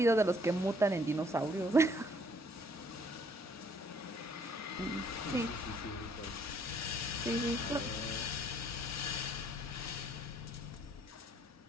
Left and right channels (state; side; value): normal; both; correlation 0.64